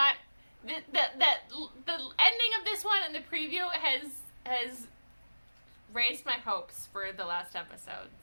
the ending of this one and the preview has raised my hopes for the last episode,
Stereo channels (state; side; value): inverted; both; correlation -1.00